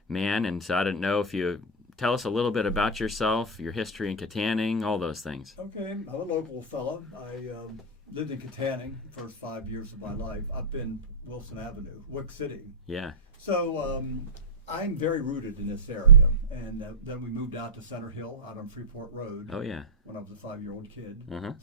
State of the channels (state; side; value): normal; both; correlation -0.02